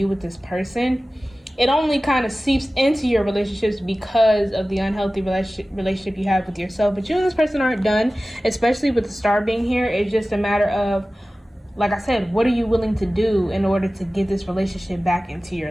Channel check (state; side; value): normal; both; correlation 0.96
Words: with this person. It only kind of seeps into your relationships because of the unhealthy relationship you have with yourself. But you and this person aren't done, especially with the star being here. It's just a matter of, like I said, what are you willing to do in order to get this relationship back into